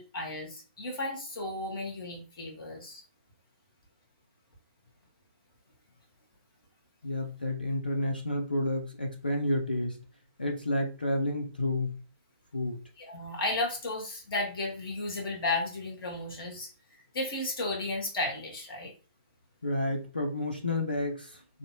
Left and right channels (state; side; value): inverted; both; correlation -0.60